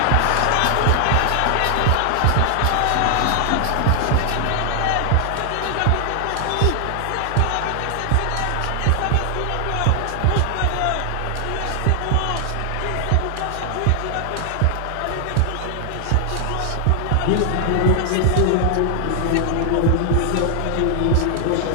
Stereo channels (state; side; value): different; both; correlation 0.00